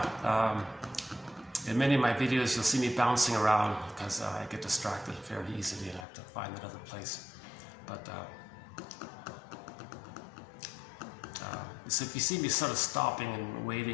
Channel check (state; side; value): drops out; right; at 6.1 s